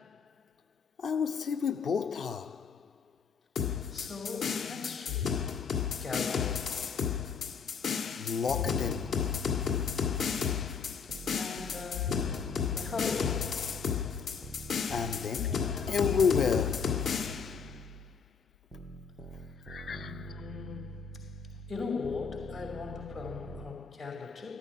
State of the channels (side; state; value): right; quieter; 6.0 dB